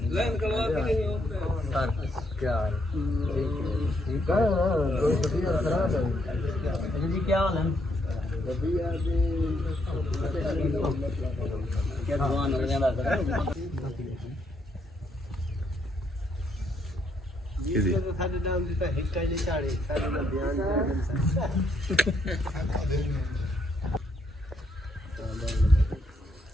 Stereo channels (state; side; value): normal; both; correlation 0.74